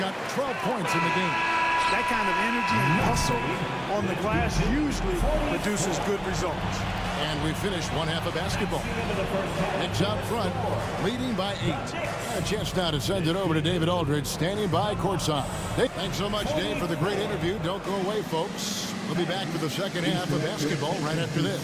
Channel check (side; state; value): both; identical; correlation 1.00